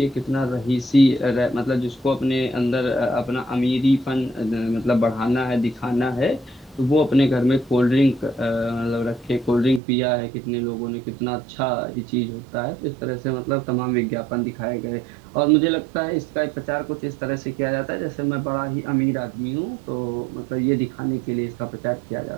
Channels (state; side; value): drops out; left; at 9.8 s